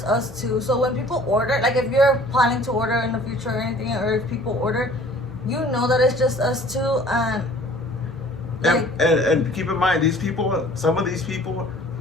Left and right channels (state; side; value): normal; both; correlation 0.51